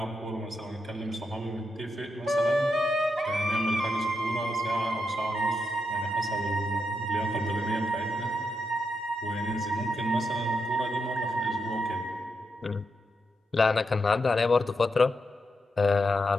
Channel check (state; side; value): normal; both; correlation 0.84